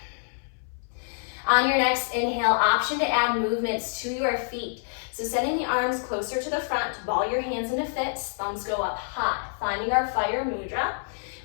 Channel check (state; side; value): silent; right; 60 dB below the other